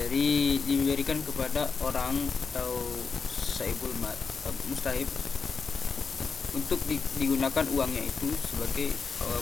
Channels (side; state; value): right; quieter; 5.2 dB